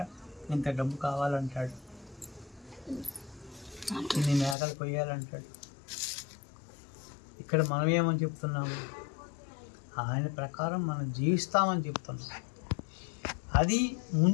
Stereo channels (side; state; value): right; drops out; at 4.5 s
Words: ఇంత డబ్బు కావాలంటాడు, ఇన్ని మేకలు కొయ్యాలంటాడు. ఇక్కడ మనం ఏమని చెప్తున్నాము? ఆయన ప్రకారం మనం జీవిస్తామని చెప్తున్నాం. అది